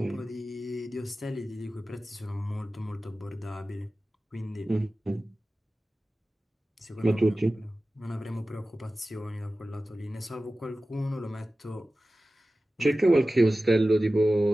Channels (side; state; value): both; normal; correlation 0.95